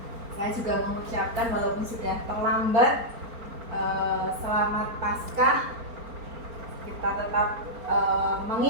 saya juga mengucapkan walaupun sudah terlambat, selamat Paskah. Kita tetap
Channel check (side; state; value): left; late; 4.4 ms